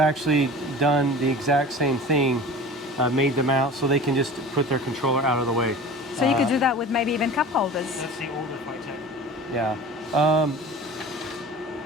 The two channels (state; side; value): normal; both; correlation 0.38